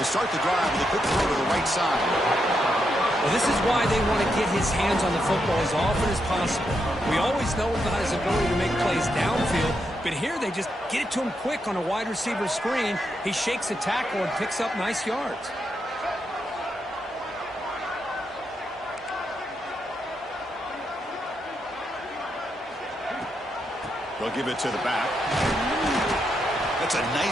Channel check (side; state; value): both; normal; correlation 0.82